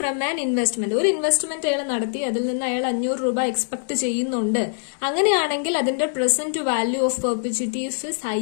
an investment, ഒരു ഇൻവെസ്റ്റ്മെന്റ് അയാൾ നടത്തി, അതിൽ നിന്ന് അയാൾ 500 രൂപ എക്സ്പെക്ട് ചെയ്യുന്നുണ്ട്. അങ്ങനെയാണെങ്കിൽ അതിന്റെ present value of perpetuity i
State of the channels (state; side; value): silent; right; digital silence